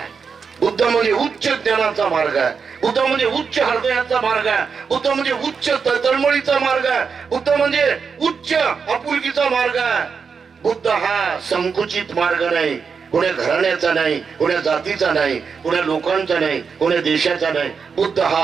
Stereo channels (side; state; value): left; quieter; 5.8 dB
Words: बुद्ध म्हणजे उच्च ज्ञानाचा मार्ग आहे. बुद्ध म्हणजे उच्च हृदयाचा मार्ग आहे. बुद्ध म्हणजे उच्च तळमळीचा मार्ग आहे. बुद्ध म्हणजे उच्च आपुलकीचा मार्ग आहे. बुद्ध हा संकुचित मार्ग नाही, कोण्या घराण्याचा नाही, कोण्या जातीचा नाही, कोण्या लोकांचा नाही, कोण्या देशाचा नाही. बुद्ध